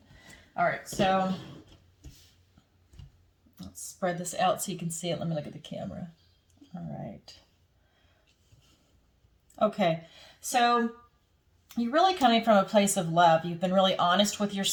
All right, so let's spread this out so you can see it. Let me look at the camera. All right. Okay, so you're really coming from a place of love. You've been really honest with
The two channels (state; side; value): identical; both; correlation 1.00